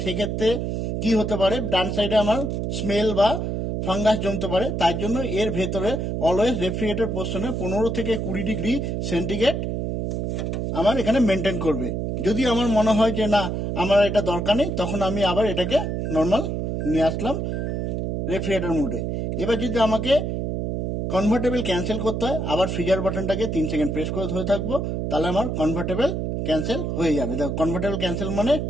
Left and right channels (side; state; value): right; noise; hum, 2 dB below the sound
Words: সেক্ষেত্রে কি হতে পারে? ডান সাইডে আমার স্মেল বা ফাঙ্গাস জমতে পারে। তাই জন্য এর ভেতরে অলওয়েজ রেফ্রিজারেটর পোর্শনে 15 থেকে 20 ডিগ্রি সেন্টিগ্রেড আমার এখানে মেনটেন করবে। যদি আমার মনে হয় যে না, আমার এটা দরকার নেই, তখন আমি আবার এটাকে নর্মাল নিয়ে আসলাম রেফ্রিজারেটর মোডে। এবার যদি আমাকে কনভার্টেবল ক্যান্সেল করতে হয়, আবার ফ্রিজার বাটনটাকে 3 সেকেন্ড প্রেস করে ধরে থাকবো, তাহলে আমার কনভার্টেবল ক্যান্সেল হয়ে যাবে। দেখো, কনভার্টেবল ক্যান্সেল মানে